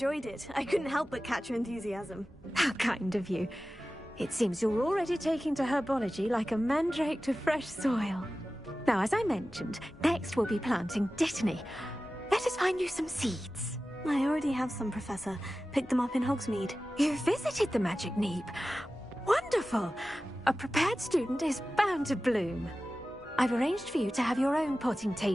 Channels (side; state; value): both; normal; correlation 0.95